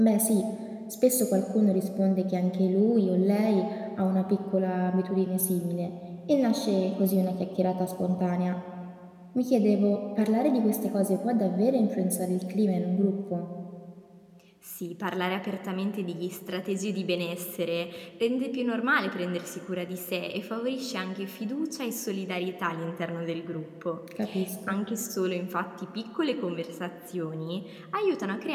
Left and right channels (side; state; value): both; identical; correlation 1.00